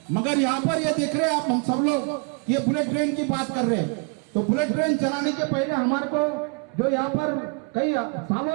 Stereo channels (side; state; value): left; quieter; 34.8 dB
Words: मगर यहाँ पर ये देख रहे हैं आप, हम सब लोग ये बुलेट ट्रेन की बात कर रहे हैं। तो बुलेट ट्रेन चलाने के पहले हमारे को जो यहाँ पर कई